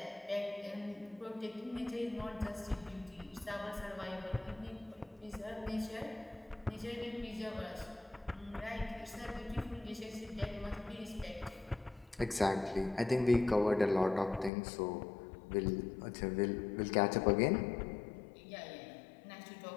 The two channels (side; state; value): right; drops out; at 14.5 s